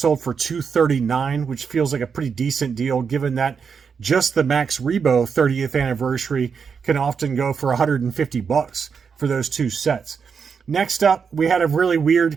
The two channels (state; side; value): quieter; left; 6.2 dB